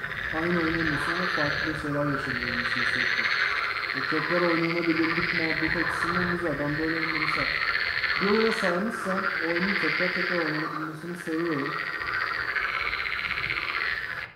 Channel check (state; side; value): identical; both; correlation 1.00